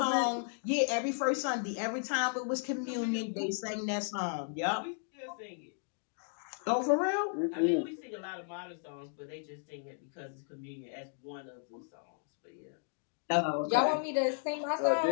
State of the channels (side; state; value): right; silent; 55 dB below the other